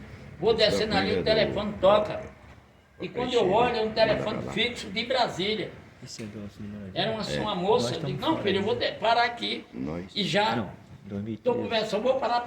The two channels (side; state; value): both; identical; correlation 1.00